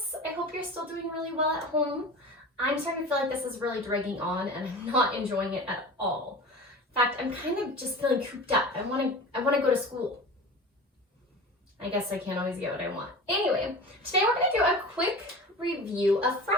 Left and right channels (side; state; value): both; normal; correlation 0.34